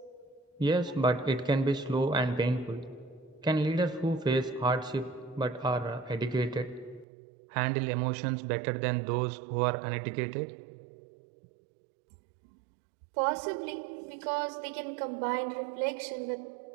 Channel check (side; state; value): left; drops out; at 7.1 s